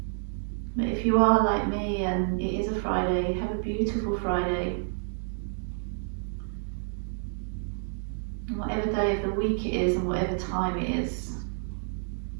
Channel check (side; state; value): left; silent; digital silence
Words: But if you are like me and it is a Friday, have a beautiful Friday. And whatever day of the week it is and whatever time it is,